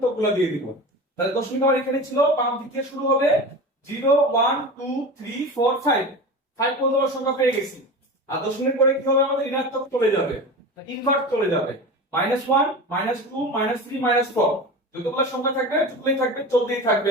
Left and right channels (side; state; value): both; normal; correlation 0.30